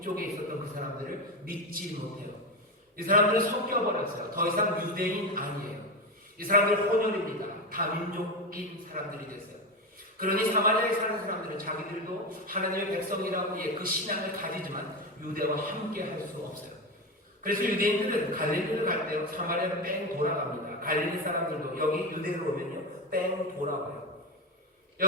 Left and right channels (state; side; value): normal; both; correlation 0.17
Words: 있었던 그 사람들을 믿지 못해요. 이 사람들은 섞여버렸어요. 더 이상 유대인 아니에요. 이 사람들 혼혈입니다. 다민족인 사람들이 됐어요. 그러니 사마리아에 사는 사람들은 자기들도 하나님의 백성이라고 그 신앙을 가지지만 유대와 함께 할 수 없어요. 그래서 유대인들은 갈릴리를 갈 때 사마리아로 뺑 돌아갑니다. 갈릴리 사람들도 여기 유대로 오면요 뺑 돌아와요.